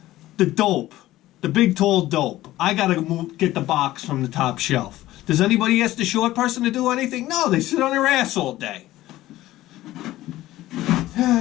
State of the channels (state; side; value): quieter; right; 15.7 dB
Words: The dope, the big tall dope. I gotta get the box from the top shelf. Does anybody ask the short person to do anything? No, they sit on their ass all day.